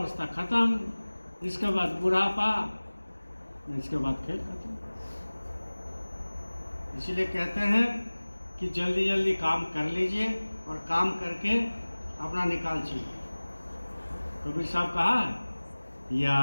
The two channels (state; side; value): inverted; both; correlation -1.00